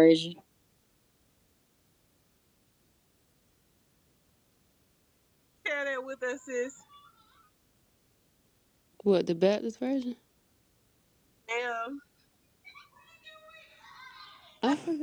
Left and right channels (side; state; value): both; identical; correlation 1.00